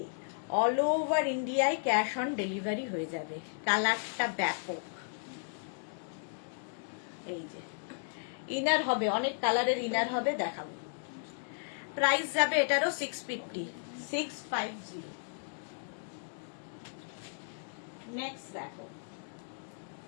অল ওভার ইন্ডিয়ায় ক্যাশ অন ডেলিভারি হয়ে যাবে। কালারটা ব্যাপক। এই যে ইনার হবে, অনেক কালারের ইনার হবে, দেখাবো। প্রাইস যাবে এটারও 650। 650। নেক্সট দেখো,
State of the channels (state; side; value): silent; right; digital silence